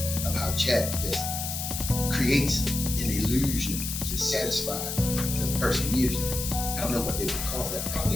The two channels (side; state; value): left; noise; hiss, 4 dB below the sound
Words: of how Chat just creates an illusion to satisfy the person using it. I don't know what they would call that,